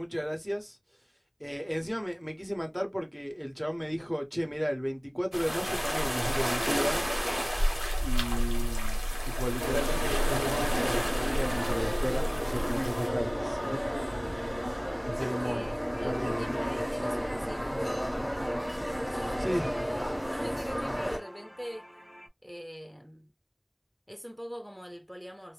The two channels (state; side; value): identical; both; correlation 1.00